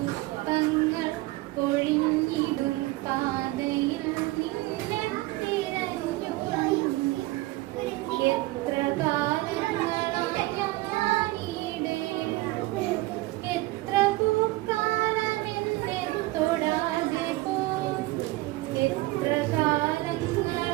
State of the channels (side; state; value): left; quieter; 19.7 dB